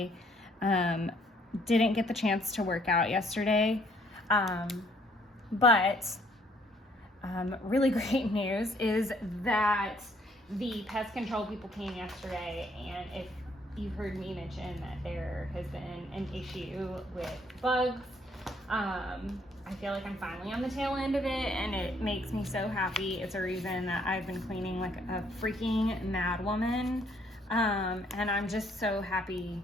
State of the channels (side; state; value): both; normal; correlation 0.65